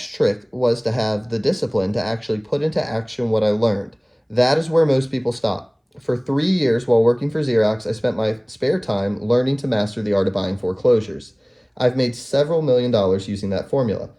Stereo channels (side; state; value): both; identical; correlation 1.00